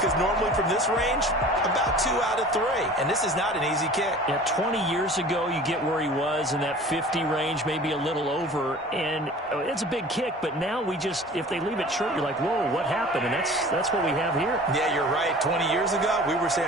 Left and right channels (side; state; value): both; normal; correlation 0.43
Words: normally from this range, about 2 out of 3. And this is not an easy kick. Yeah, 20 years ago, you get where he was in that 50 range, maybe a little over. And it's a big kick, but now we just, if they leave it short, you're like, whoa, what happened? And that's what we have here. Yeah, you're right. 20 years ago, we were